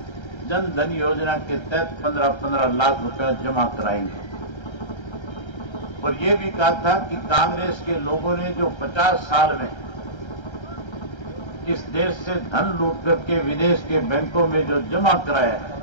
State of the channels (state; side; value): late; right; 1.3 ms